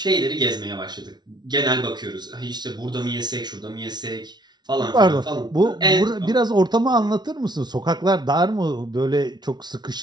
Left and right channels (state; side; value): late; left; 0.20 ms